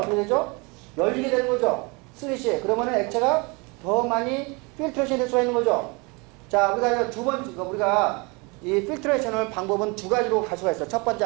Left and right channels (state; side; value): quieter; left; 28.7 dB